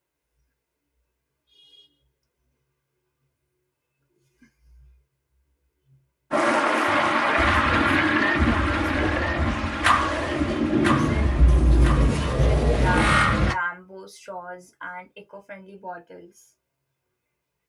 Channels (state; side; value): identical; both; correlation 1.00